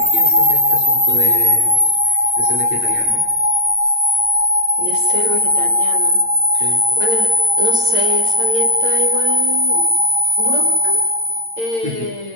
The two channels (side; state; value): left; late; 8.8 ms